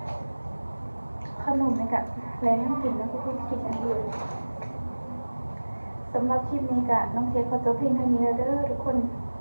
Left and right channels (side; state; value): both; inverted; correlation -1.00